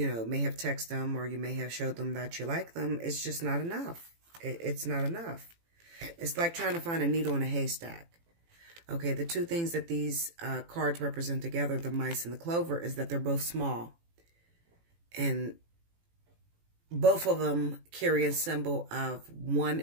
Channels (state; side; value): late; left; 18 ms